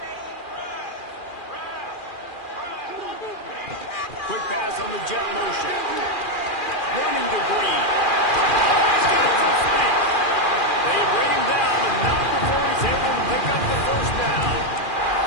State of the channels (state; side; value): late; right; 2.4 ms